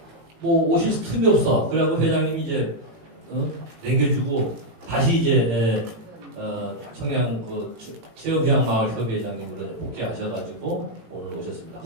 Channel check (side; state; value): left; late; 18 ms